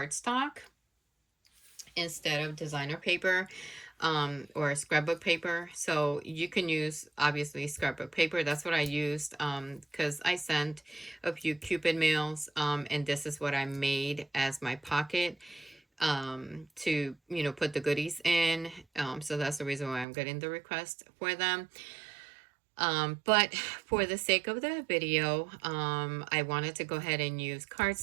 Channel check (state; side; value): drops out; left; at 20.1 s